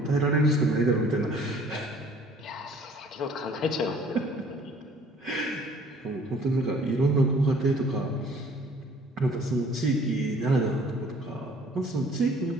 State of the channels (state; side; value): normal; both; correlation 0.55